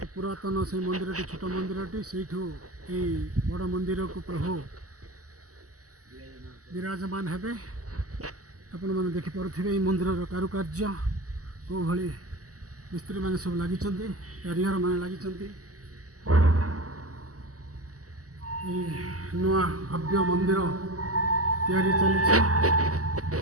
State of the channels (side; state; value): left; late; 0.66 ms